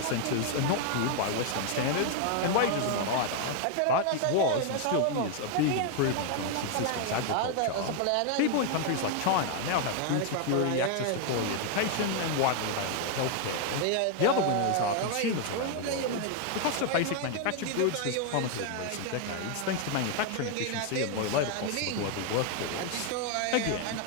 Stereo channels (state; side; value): different; both; correlation 0.00